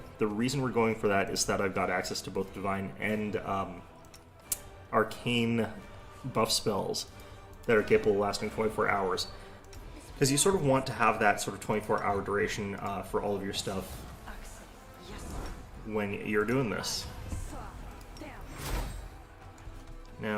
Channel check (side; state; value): both; identical; correlation 1.00